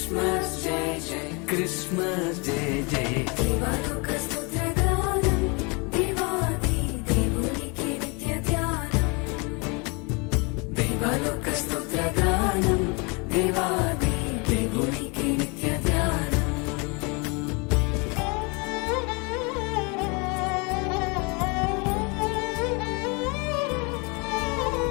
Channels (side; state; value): right; quieter; 30.5 dB